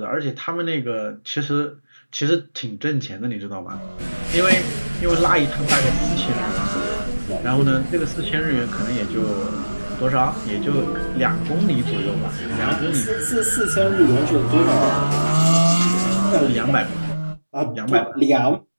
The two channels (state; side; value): inverted; both; correlation -1.00